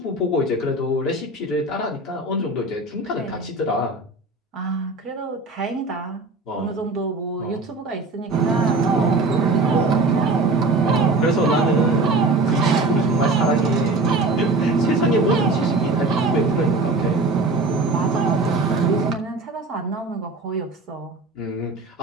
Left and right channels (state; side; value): quieter; left; 3.2 dB